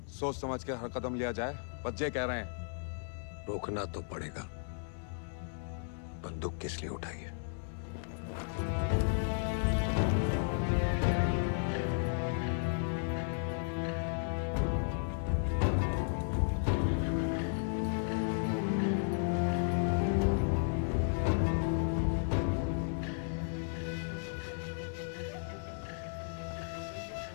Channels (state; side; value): silent; right; digital silence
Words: सोच समझ के हर कदम लिया जाए, बच्चे कह रहे हैं। रोकना तो पड़ेगा। बंदूक किस लिए उठाई है?